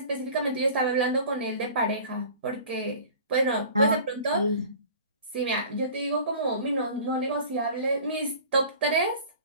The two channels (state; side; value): inverted; both; correlation -0.43